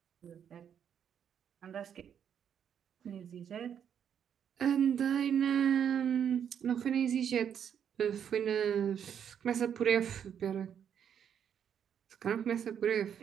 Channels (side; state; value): left; quieter; 8.5 dB